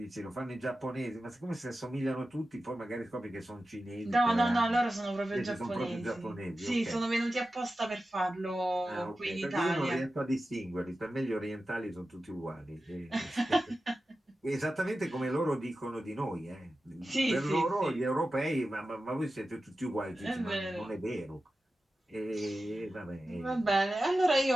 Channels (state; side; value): normal; both; correlation 0.93